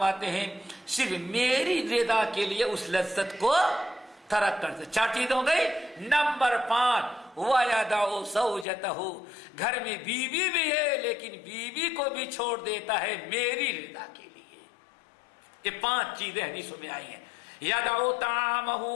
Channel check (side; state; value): right; drops out; at 8.7 s